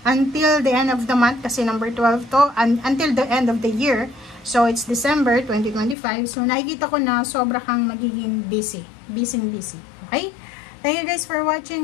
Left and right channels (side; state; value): right; drops out; at 6.0 s